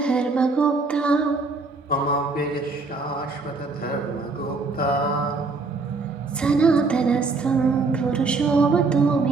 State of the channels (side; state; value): left; quieter; 3.9 dB